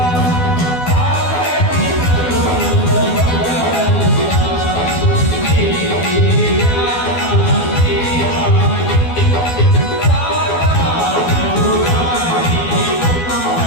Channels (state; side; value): late; right; 12 ms